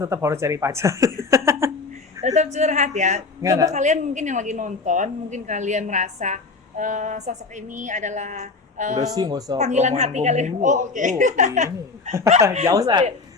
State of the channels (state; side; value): quieter; right; 4.1 dB